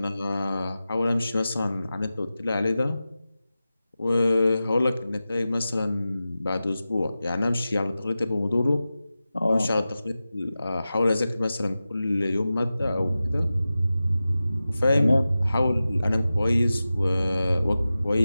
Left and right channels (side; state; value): both; inverted; correlation -0.94